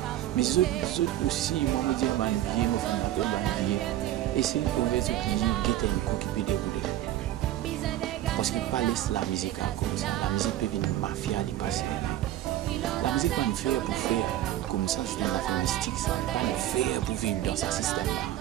Mais ceux aussi, moi, je dis, je vais faire un billet. Et c'est pour les autres qui guettent un coup qui peut dérouler. Parce qu'ils ne pas laisser la musique comme ça. La musique peut venir mafia, les passer. La musique va nous faire pour faire comme ça, c'est une affaire mystique, ça va pas nous faire pour vivre dans ce système-là.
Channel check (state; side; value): quieter; left; 13.4 dB